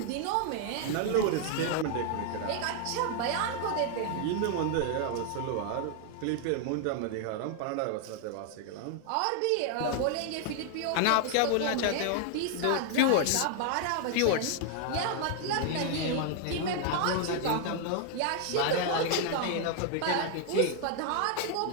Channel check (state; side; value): different; both; correlation 0.00